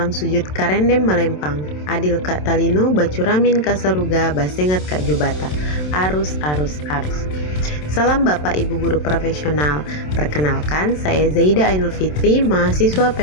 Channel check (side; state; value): right; late; 27 ms